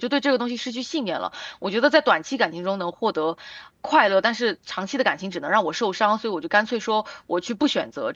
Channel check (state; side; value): identical; both; correlation 1.00